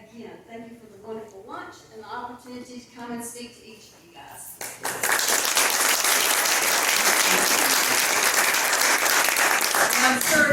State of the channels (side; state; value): both; identical; correlation 1.00